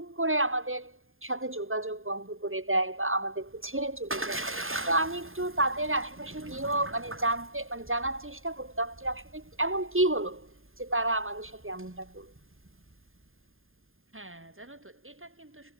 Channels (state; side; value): late; left; 0.60 ms